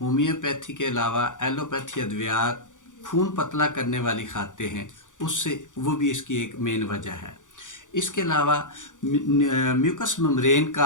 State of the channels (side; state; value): right; late; 0.87 ms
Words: के अलावा एलोपैथी अद्वियात खून पतला करने वाली खाते हैं, उससे वो भी इसकी एक मेन वजह है। इसके अलावा म्यूकस मेम्ब्रेन